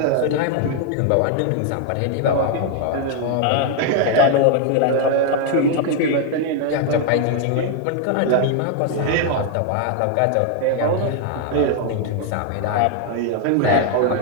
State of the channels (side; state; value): both; different; correlation 0.00